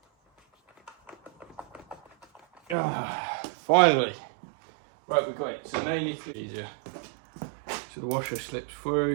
Finally. Right, we've got it. So now you need to get easier. So the washer slips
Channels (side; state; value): left; drops out; at 2.8 s